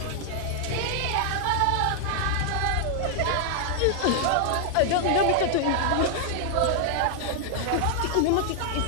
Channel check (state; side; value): different; both; correlation 0.00